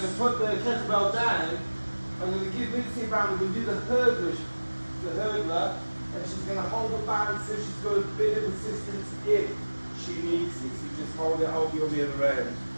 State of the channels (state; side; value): inverted; both; correlation -1.00